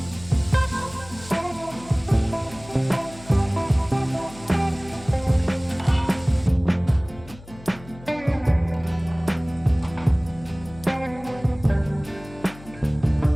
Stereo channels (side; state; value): left; noise; hum, 19 dB below the sound